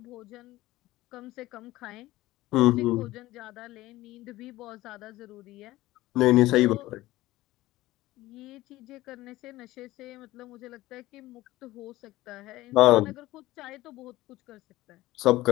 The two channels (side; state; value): right; quieter; 17.4 dB